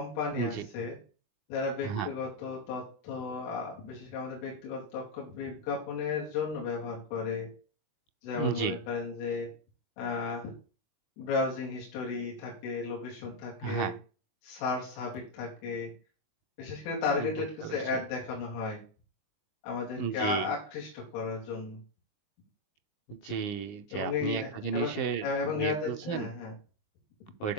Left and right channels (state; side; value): late; right; 19 ms